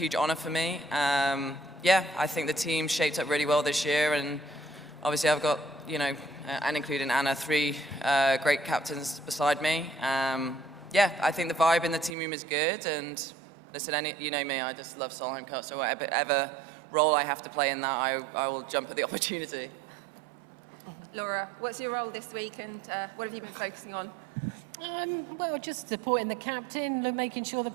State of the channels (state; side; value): drops out; left; at 12.2 s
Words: honour for me. Yeah, I think the team shaped up really well this year, and obviously I've got, and including Anna, 3 great captains beside me. Yeah, I think the vibe in the team room is good, and listen, you know me, I just love Solheim Cup, so whatever role I have to play in that, I will jump at the opportunity. Laura, what's your role this week, and what have you been focusing on? Well, just supporting the captain, making sure the